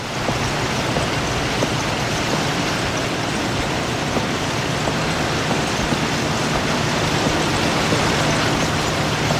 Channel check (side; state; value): both; identical; correlation 1.00